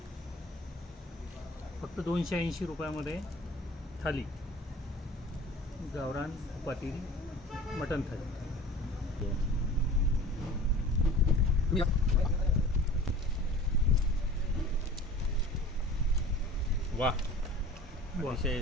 फक्त 280 रुपयामध्ये थाली गावरान तुपातील मटण थाली. वाह,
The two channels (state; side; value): normal; both; correlation 0.43